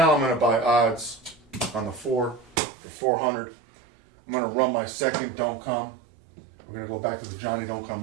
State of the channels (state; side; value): drops out; left; at 2.6 s